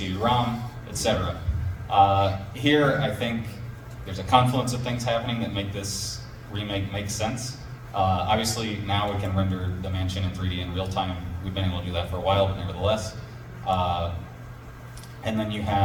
etc. Here, I think there's a confluence of things happening that make this remake make sense. Obviously, now we can render the mansion in 3D in real time. We've been able to do that for a while, but nevertheless. And then you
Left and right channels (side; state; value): both; identical; correlation 1.00